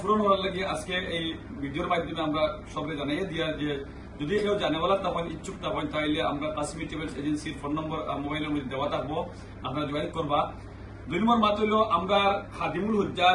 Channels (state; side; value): identical; both; correlation 1.00